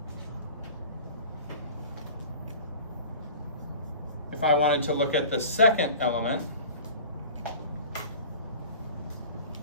wanted to look at the second element,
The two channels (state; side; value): inverted; both; correlation -0.41